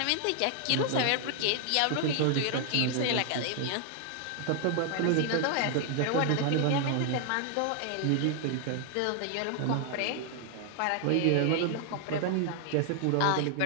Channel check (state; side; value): different; both; correlation 0.00